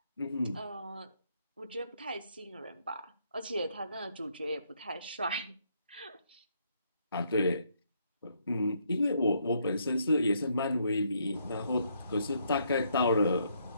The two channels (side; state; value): both; inverted; correlation -0.72